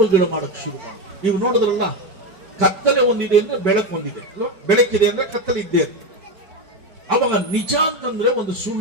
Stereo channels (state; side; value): late; left; 4.5 ms